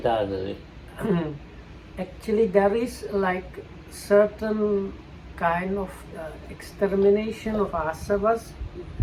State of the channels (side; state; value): both; identical; correlation 1.00